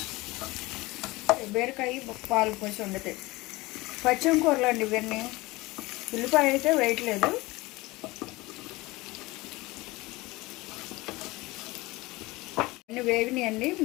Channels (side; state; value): right; quieter; 21.4 dB